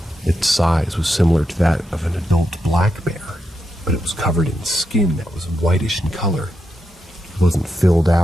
Its size was similar to that of an adult black bear, but it was covered in skin that was whitish in color. It wasn't filled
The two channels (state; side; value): normal; both; correlation 0.85